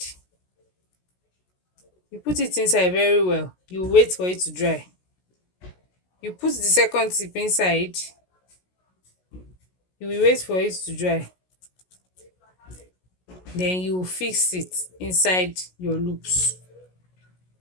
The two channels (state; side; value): late; right; 16 ms